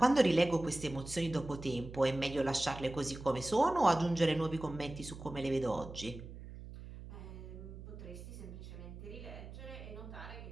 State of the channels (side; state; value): right; noise; hum, 13 dB below the sound